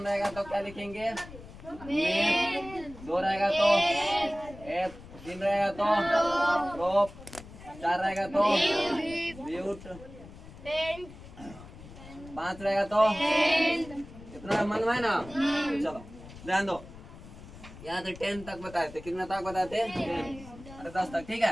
रहेगा तो क्या लिखेंगे? मेथ। 2 रहेगा तो एथ, 3 रहेगा तो प्रोप, 4 रहेगा तो ब्यूट, 5 रहेगा तो इतना मन है ना। चलो ध्यान दो, यहाँ से 10 तक बताए थे। कितना तक बताए थे? 10 अरे 10 तक, ठीक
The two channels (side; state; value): left; noise; rumble, 17 dB below the sound